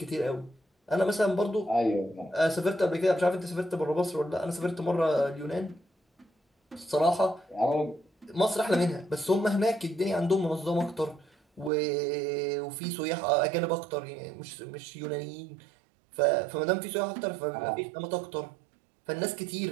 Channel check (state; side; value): drops out; left; at 11.7 s